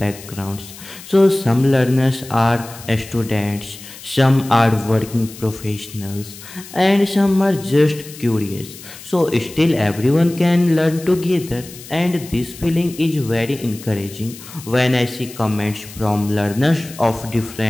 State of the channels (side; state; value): left; noise; hiss, 16 dB below the sound